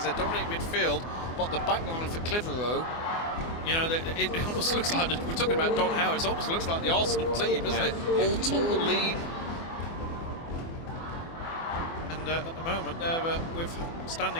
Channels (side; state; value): right; late; 24 ms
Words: They're dominating midfield, but the back line for Clitheroe, it almost looks like, we're talking about Don Howe, it almost looks like the Arsenal team, doesn't it? All tall, lean. And at the moment, they're